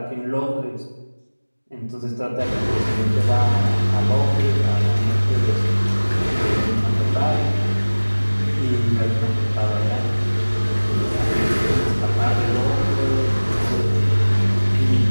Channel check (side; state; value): both; inverted; correlation -1.00